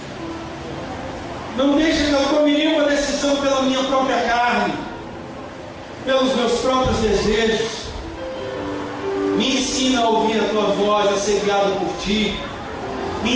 Não deixe que eu tome nenhuma decisão pela minha própria carne, pelos meus próprios desejos. Me ensina a ouvir a tua voz, a ser guiado por ti. Me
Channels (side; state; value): both; identical; correlation 1.00